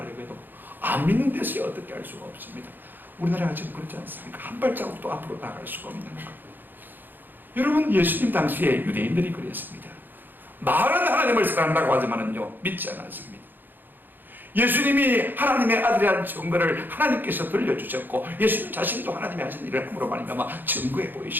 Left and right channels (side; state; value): left; late; 0.091 ms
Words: 해도 안 믿는 데서 어떻게 할 수가 없습니다. 우리나라가 지금 그렇지 않습니까? 한 발자국도 앞으로 나갈 수가 없는 것. 여러분, 예수님 당시에 유대인들이 그랬습니다. 말은 하나님을 사랑한다고 하지만은요, 믿지 않았습니다. 예수님이 하나님의 아들이라는 증거를 하나님께서 들려주셨고, 예수님 자신도 하나님이 하신 일을 함으로 말미암아 증거해